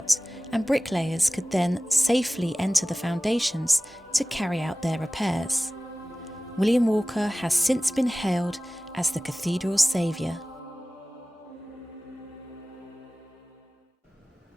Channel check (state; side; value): normal; both; correlation 0.97